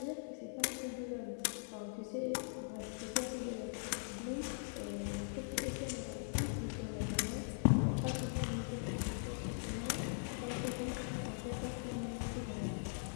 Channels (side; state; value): right; silent; digital silence